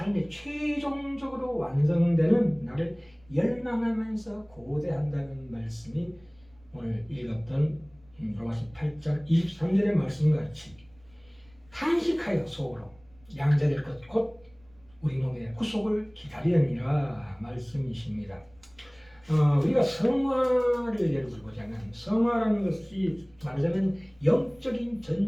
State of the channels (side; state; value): right; noise; rumble, 29 dB below the sound